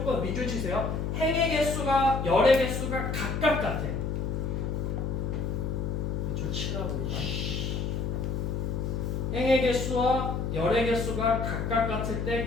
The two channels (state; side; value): noise; left; hum, 1 dB below the sound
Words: 밑줄 치세요. 행의 개수가 열의 개수가 각각 같아. 밑줄 치라고. 행의 개수와 열의 개수가 각각 같을